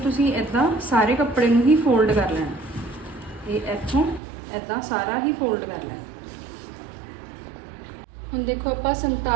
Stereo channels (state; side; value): drops out; left; at 4.2 s